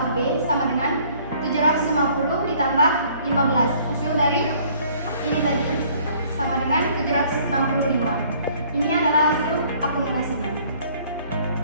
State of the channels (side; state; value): both; inverted; correlation -0.57